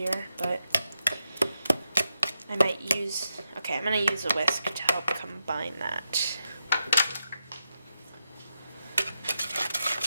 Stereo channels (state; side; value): inverted; both; correlation -0.85